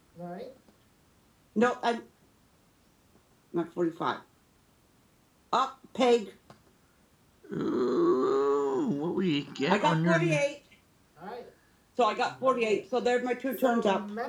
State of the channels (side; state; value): both; identical; correlation 1.00